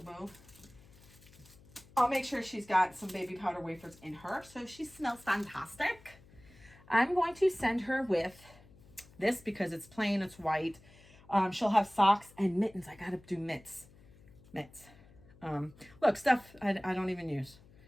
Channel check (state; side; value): noise; left; hum, 24 dB below the sound